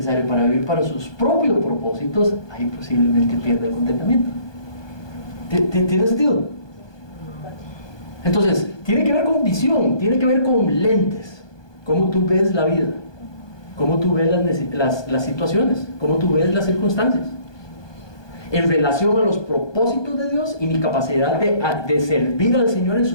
para vivir para sus propios propósitos, ahí posiblemente pierde el contentamiento. ¿Tiene sentido? Entonces, tiene que ver con visión, tiene que ver con lentes, cómo tú ves la vida, cómo tú ves las situaciones, cómo tú ves las circunstancias, en relación a los propósitos de Dios y mi capacidad de servir al Señor en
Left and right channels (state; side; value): late; right; 1.2 ms